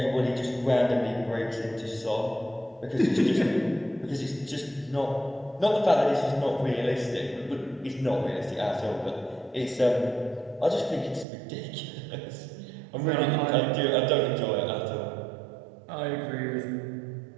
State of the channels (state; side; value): drops out; left; at 11.2 s